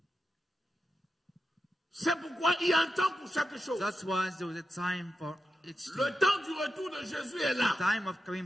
C'est pourquoi il y a un temps pour chaque chose. That's why there was a time for each thing. Le temps du retour de Jésus est là. Time of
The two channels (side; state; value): both; normal; correlation 0.89